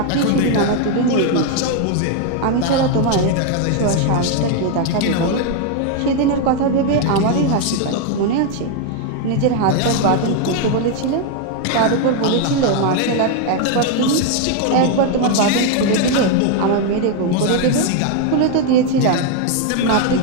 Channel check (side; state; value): both; different; correlation 0.01